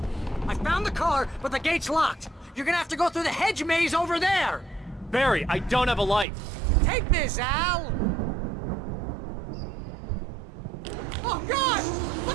I found the car, but the gate's locked. You're gonna have to go through the hedge maze over there! Barry, I don't have a light. Take this, Al! Oh, God!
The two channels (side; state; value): left; drops out; at 6.2 s